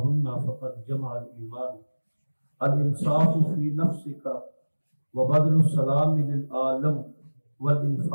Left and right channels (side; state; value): both; inverted; correlation -1.00